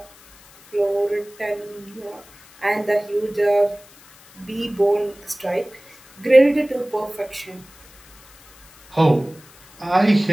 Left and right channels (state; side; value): noise; left; hiss, 25 dB below the sound